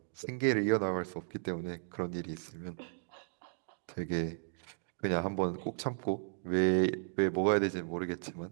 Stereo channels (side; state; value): left; silent; digital silence